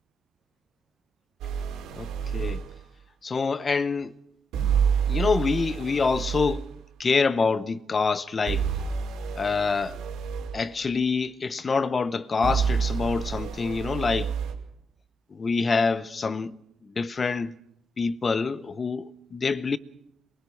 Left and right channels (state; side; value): normal; both; correlation 0.83